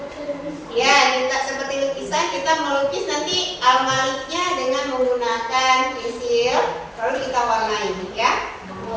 Ya, kita seperti lukisan, kita melukis nanti Al-Maliknya dengan menggunakan pensil, lalu kita warnai ya.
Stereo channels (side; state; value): both; identical; correlation 1.00